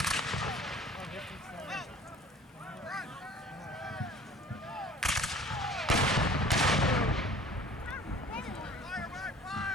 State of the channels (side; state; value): both; normal; correlation 0.47